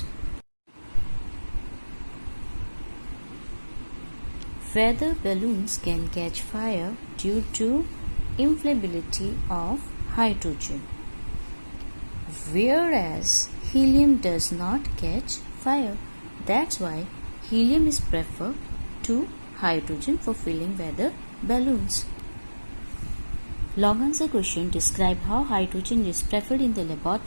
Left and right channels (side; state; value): both; inverted; correlation -1.00